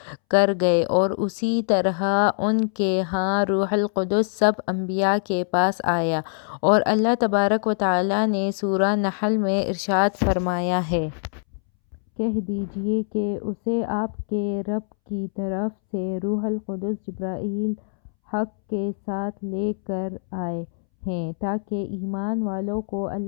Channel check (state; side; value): silent; right; 63 dB below the other